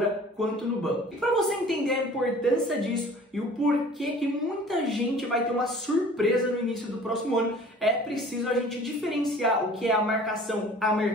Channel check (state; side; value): normal; both; correlation 0.48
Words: quanto no banco. E para você entender a importância disso e o porquê que muita gente vai ter uma surpresa no início do próximo ano, é preciso a gente diferenciar o que é a marcação a